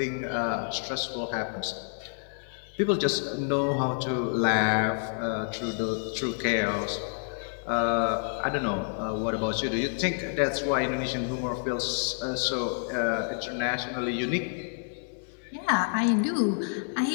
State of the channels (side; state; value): right; silent; 59 dB below the other